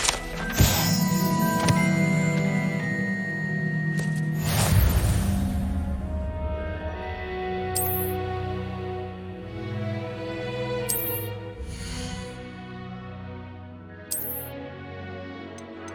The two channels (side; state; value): both; identical; correlation 1.00